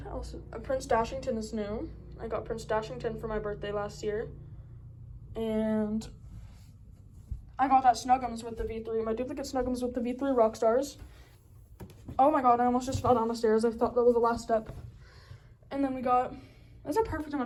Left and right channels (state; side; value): identical; both; correlation 1.00